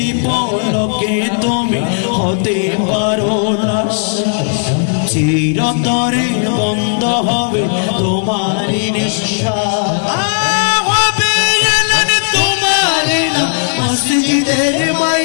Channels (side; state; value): right; silent; digital silence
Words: পলকে তুমি হতে পারো না, চিরতরে বন্ধ হবে তোমার নিঃশ্বাস, হবে এলেন তোমারি না মসজিদের